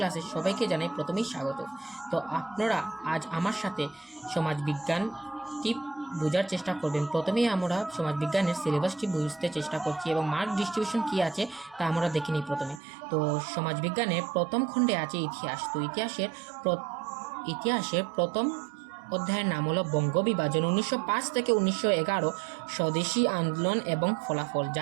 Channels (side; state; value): left; drops out; at 12.8 s